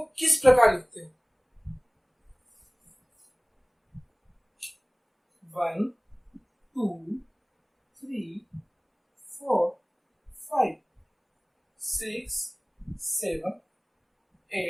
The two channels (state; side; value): identical; both; correlation 1.00